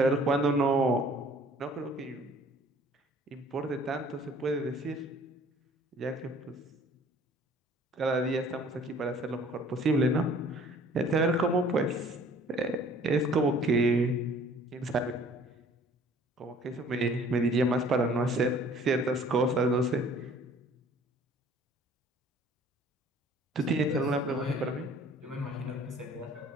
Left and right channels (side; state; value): both; normal; correlation 0.53